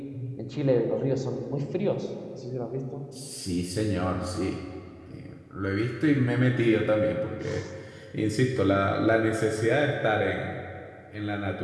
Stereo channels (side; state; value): both; identical; correlation 1.00